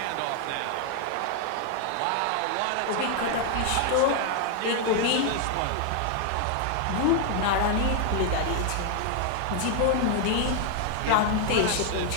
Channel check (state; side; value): different; both; correlation 0.00